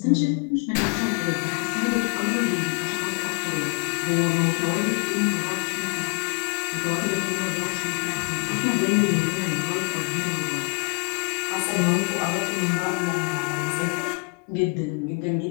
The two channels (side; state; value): right; quieter; 31.8 dB